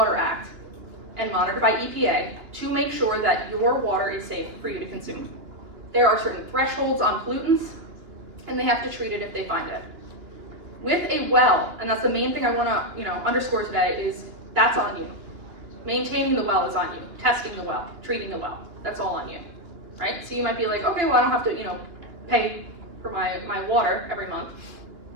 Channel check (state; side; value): late; left; 2.9 ms